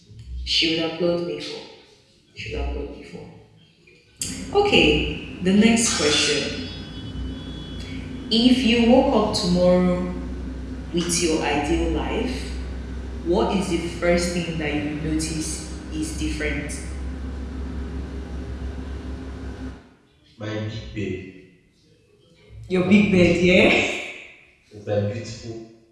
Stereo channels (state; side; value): identical; both; correlation 1.00